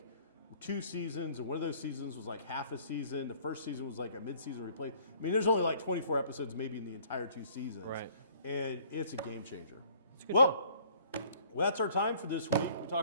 2 seasons, and one of those seasons was like half a season. The first season was like a mid-season replay. I mean, there's only like 24 episodes maybe in the entire 2 seasons. Right. And it's a game changer. It's a good Well, that's our time for this week. We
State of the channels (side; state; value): both; inverted; correlation -0.57